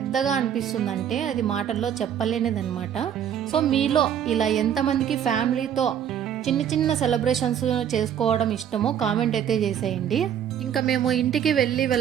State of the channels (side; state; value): left; quieter; 9.3 dB